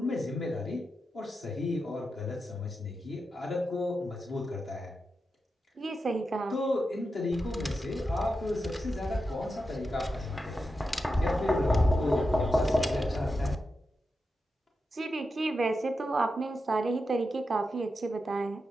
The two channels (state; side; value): normal; both; correlation 0.89